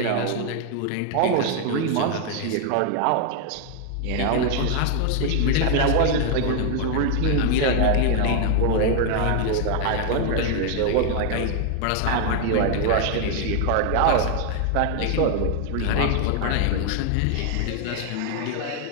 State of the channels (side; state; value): both; different; correlation 0.00